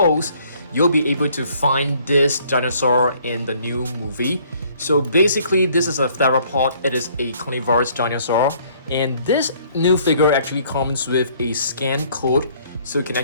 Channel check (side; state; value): both; inverted; correlation -0.61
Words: you'll be able to find this dinosaur in the new movie. So basically this is a theropod. It is a carnivorous dinosaur, and this new figure actually comes with a scan code, so you can